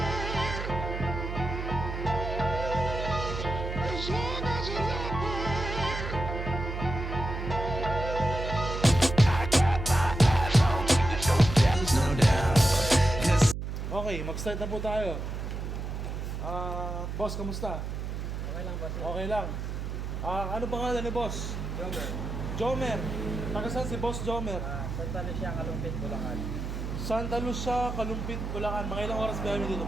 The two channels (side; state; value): right; noise; hum, 5 dB below the sound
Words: Okay, mag-start na po tayo. Boss, kamusta? Okay lang ba? Okay lang. Ano pangalan ni boss? Jomer. Jomer. Taga saan si boss Jomer? Santa Lucia, Kalumpit, Bulacan. Santa Lucia, Kalumpit, Bulacan. Mga ilang oras biyahe mo dito,